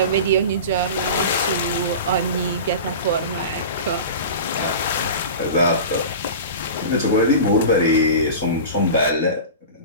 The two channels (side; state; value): both; inverted; correlation -0.32